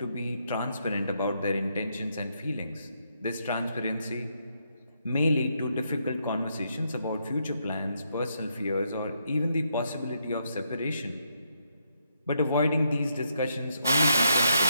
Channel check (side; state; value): both; inverted; correlation -0.77